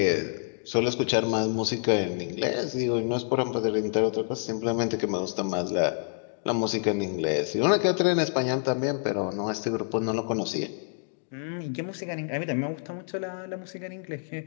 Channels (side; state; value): right; silent; digital silence